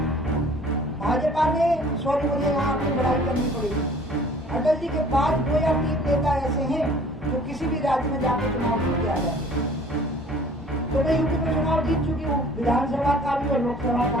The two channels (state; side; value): normal; both; correlation 0.51